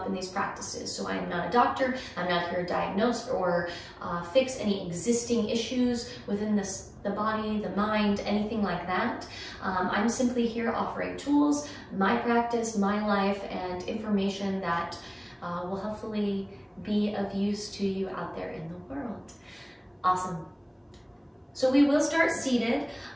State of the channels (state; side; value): identical; both; correlation 1.00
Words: in these practices. So I am not a doctor. I'm not here to diagnose or fix any existing issues within the body, the mind, anything like that. I'm simply here offering tools, my practice, my life, and information that will hopefully be of use to you out there in the world. Awesome. So we will start seated.